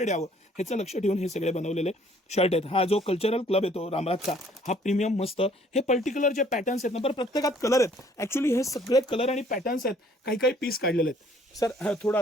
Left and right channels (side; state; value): both; normal; correlation 0.60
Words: यावं, ह्याचं लक्ष ठेवून हे सगळे बनवलेले शर्ट आहेत. हा जो कल्चरल क्लब येतो रामराजचा, हा प्रीमियम मस्त. हे पर्टिक्युलर जे पॅटर्न्स आहेत ना, बरं प्रत्येकात कलर आहेत. ऍक्च्युली हे सगळे कलर आणि पॅटर्न्स आहेत, काही काही पीस काढलेले आहेत. सर थोडं